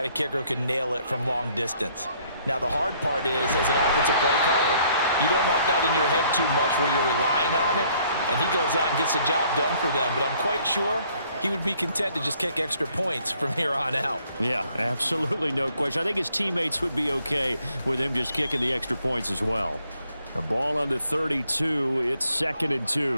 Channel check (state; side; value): inverted; both; correlation -0.64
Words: a kicker who can nail it from long distance? Now, the hard part is, as an offensive play caller, you don't want that in your head too much where you're relying on it, and he goes out and gets the job done for them. But I'm quite sure he would be content to just kick extra points from here on out. Yeah, absolutely no question. I think his teammates would be okay with him just kicking the extra points as well. The ball on the 32, it's 2nd and